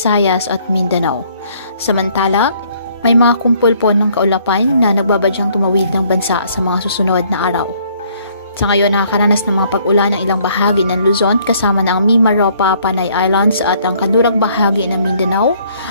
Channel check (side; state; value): both; inverted; correlation -0.63